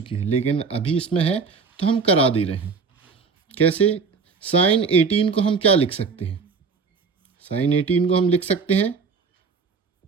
है, लेकिन अभी इसमें है तो हम करा दे रहे हैं। कैसे, साइन 18 को हम क्या लिख सकते हैं, साइन 18 को हम लिख सकते हैं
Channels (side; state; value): left; quieter; 5.2 dB